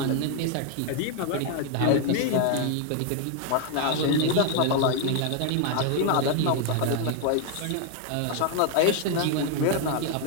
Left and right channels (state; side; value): different; both; correlation 0.01